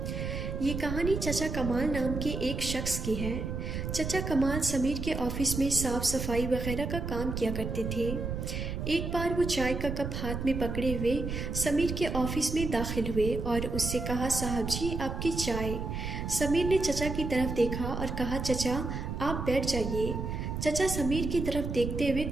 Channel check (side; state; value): right; noise; rumble, 4 dB below the sound